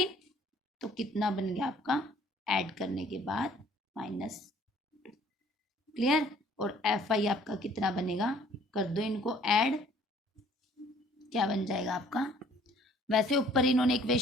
तो कितना बन गया आपका ऐड करने के बाद -2। क्लियर, और एफ आई आपका कितना बनेगा, कर दो इनको ऐड। क्या बन जाएगा आपका, वैसे ऊपर इन्होंने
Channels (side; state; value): both; normal; correlation 0.57